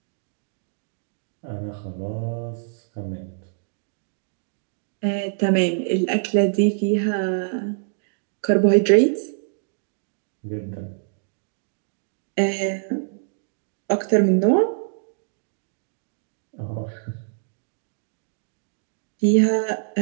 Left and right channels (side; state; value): left; silent; digital silence